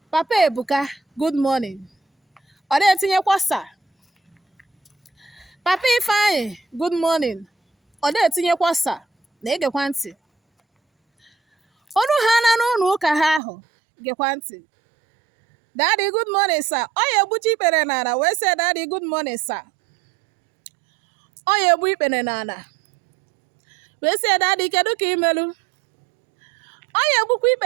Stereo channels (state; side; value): drops out; left; at 13.4 s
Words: Papa Ebuka, good morning. Ọ na-etinyekwa sa. Papa Ifeanyị, good morning. Ọ na-etinyekwa sa. Na-egekwa ntị. Ọnụ ha na n'ụlọ ụka ha ahụ, gekwa ntị. Daddy, good morning, sir. Ọ ya egbuchi ikpere n'ala wee sị Daddy, good morning, sir. Ọ ya egbu ikpere n'ala wee sị Daddy, kedu ka imelu? Ọ ya egbukwa